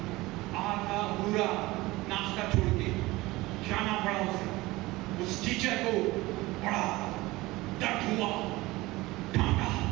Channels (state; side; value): quieter; left; 20.1 dB